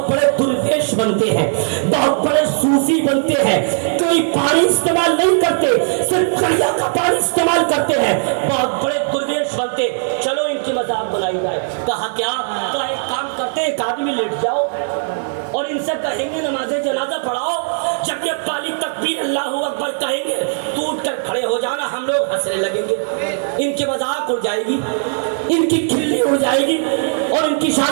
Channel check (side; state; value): left; silent; digital silence